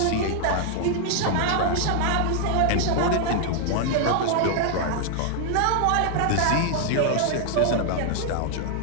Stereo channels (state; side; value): different; both; correlation 0.00